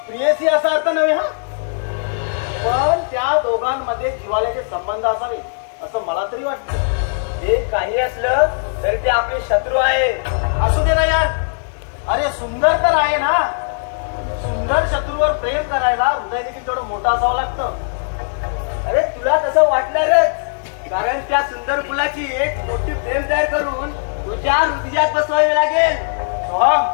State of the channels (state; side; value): silent; right; 63 dB below the other